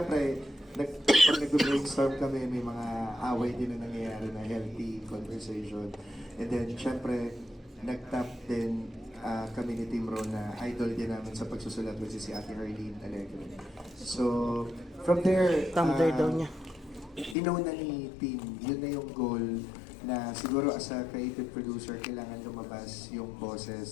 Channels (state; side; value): drops out; right; at 17.4 s